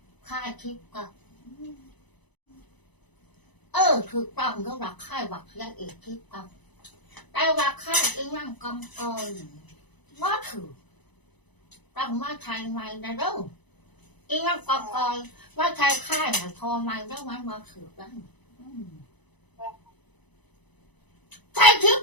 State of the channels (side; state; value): right; late; 1.0 ms